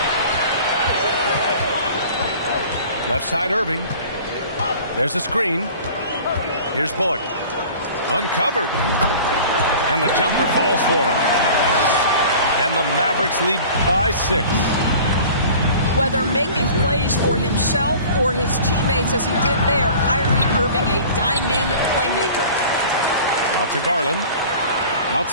Left side Irving. There's a screen. Here's Bullock. Uncovered. And the jumper falls for him. And the Mavericks lead by 6. Whether making plays for himself or his teammates as he did there, Kyrie Irving, a dynamic playmaker. Out to Garland.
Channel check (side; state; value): both; inverted; correlation -0.43